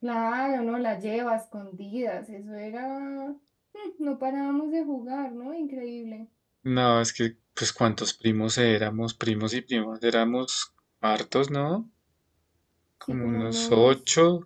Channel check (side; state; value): both; identical; correlation 1.00